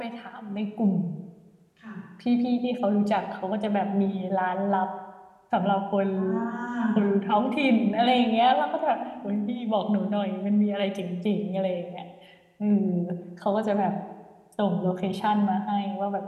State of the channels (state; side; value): identical; both; correlation 1.00